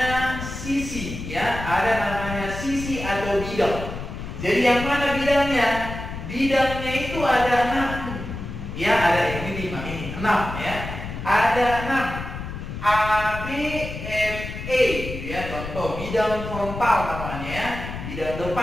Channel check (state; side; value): noise; left; rumble, 8 dB below the sound